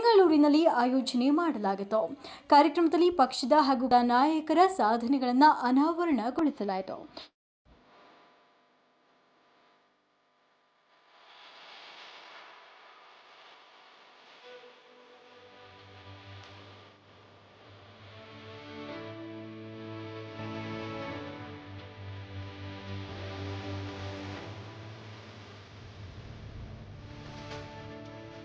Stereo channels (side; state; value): both; identical; correlation 1.00